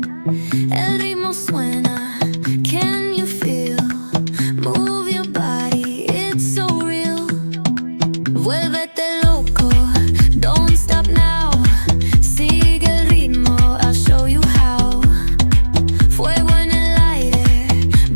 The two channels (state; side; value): inverted; both; correlation -1.00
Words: El ritmo suena, can you feel? Move your body, it's so real. Vuélvete loco, don't stop now. Sigue el ritmo, I'll show you how. Fuego en el aire,